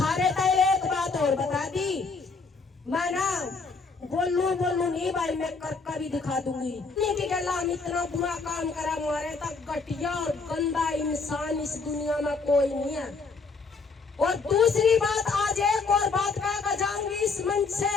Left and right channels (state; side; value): quieter; right; 4.4 dB